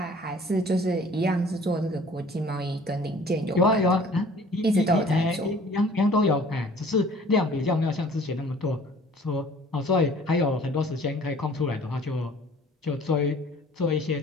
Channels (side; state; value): both; normal; correlation 0.51